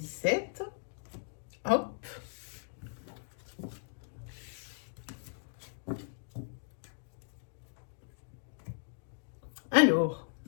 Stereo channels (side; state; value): right; silent; digital silence